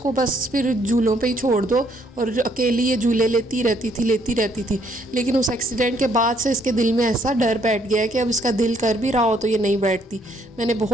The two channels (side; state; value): both; normal; correlation 0.68